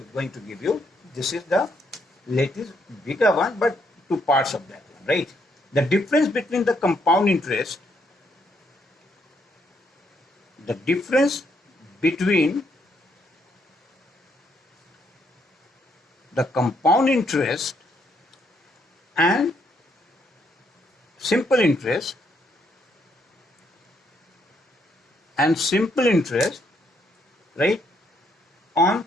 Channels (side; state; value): both; normal; correlation 0.73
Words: to give you. This is the latest bigger one, but 2 parts of that one, right? The difference between the compound interest, the difference between the compound interest and simple interest right, on